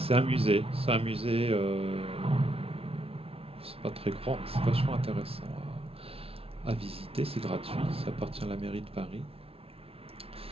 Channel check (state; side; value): late; left; 0.28 ms